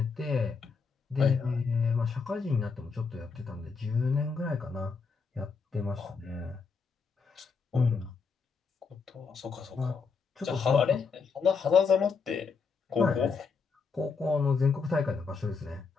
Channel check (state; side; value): quieter; right; 5.1 dB